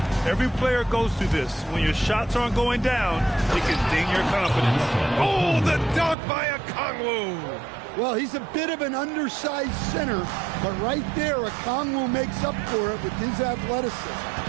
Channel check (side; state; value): left; drops out; at 6.2 s